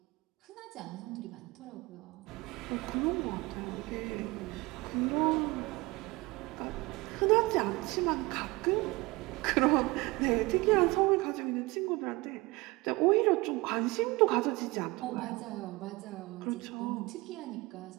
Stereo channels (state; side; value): quieter; left; 22.9 dB